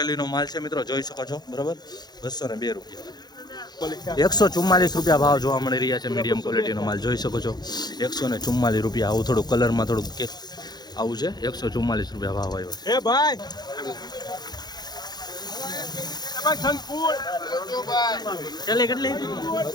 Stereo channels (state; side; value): late; right; 0.20 ms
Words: માલ છે મિત્રો. જોઈ શકો છો. બરાબર, 202 રૂપિયા. 144 રૂપિયા ભાવ જોવા મળી રહ્યા છે. મીડિયમ ક્વોલિટીનો માલ જોઈ શકો છો. 144 રૂપિયા. આવું થોડું કલરમાં થોડુંક કે આવું છે. 144 રૂપિયા ભાવ આવ્યો છે. કેટલી